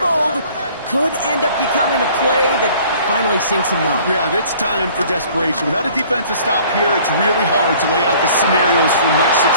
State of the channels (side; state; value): both; inverted; correlation -0.53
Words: could end up becoming a play that finally sinks a note. Yeah, it's time for desperation. Without a defensive stop here, it's really hard to lay out the scenarios for much